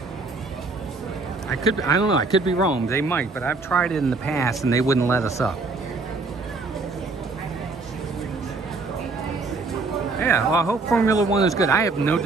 I don't know, I could be wrong, they might, but I've tried it in the past and they wouldn't let us up. Yeah, well, I hope Formula One is good. I have no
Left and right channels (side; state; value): left; quieter; 3.7 dB